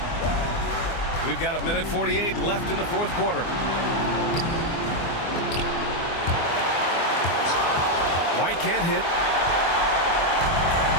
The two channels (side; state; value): right; late; 24 ms